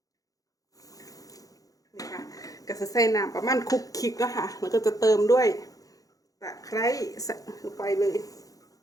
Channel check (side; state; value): right; late; 0.17 ms